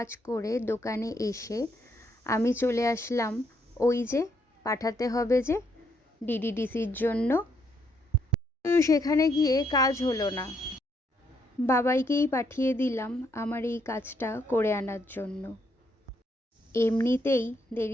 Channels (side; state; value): both; normal; correlation 0.74